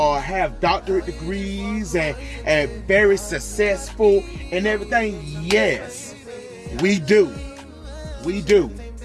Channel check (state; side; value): identical; both; correlation 1.00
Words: have doctorate degrees and very successful and everything. Yes, we do.